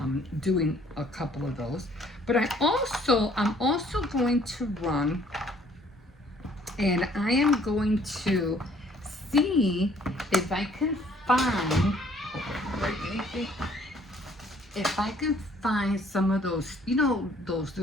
doing a couple of those. But I'm also going to run, and I am going to see if I can find, if I can find some of those, those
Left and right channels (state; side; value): normal; both; correlation 0.60